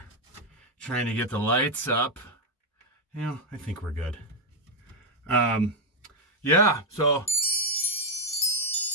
trying to get the lights up. I think we're good. So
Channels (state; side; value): normal; both; correlation 0.00